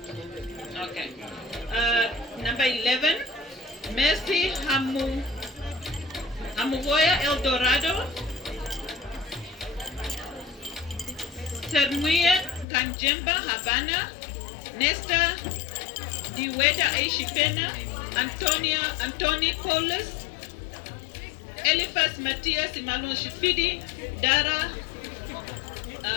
Okay. Number 11, Mercy Hamuvoya El Dorado, Sermuye Kanjemba Havana, Nesta Diweda Eishipena, Antoni Paulus, Eliphas Matthias Emmanuel Shifidi, Dara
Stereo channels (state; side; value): drops out; right; at 12.7 s